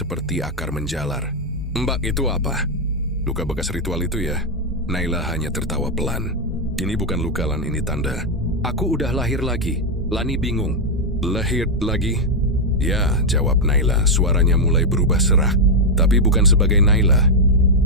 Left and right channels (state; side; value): normal; both; correlation 0.00